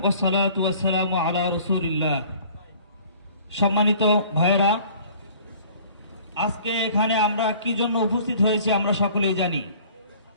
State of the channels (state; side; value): inverted; both; correlation -0.51